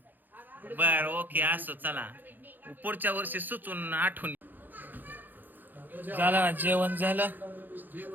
बर ओके असो. चला पुढच्या वर्षी सुचून आठवण. झालं जेवण झालं.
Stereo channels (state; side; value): late; left; 0.088 ms